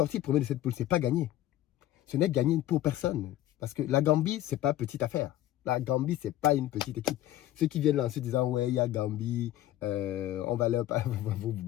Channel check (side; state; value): right; quieter; 13.6 dB